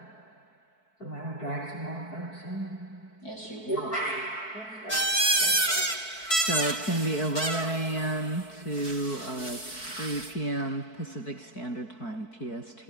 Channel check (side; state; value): right; late; 4.6 ms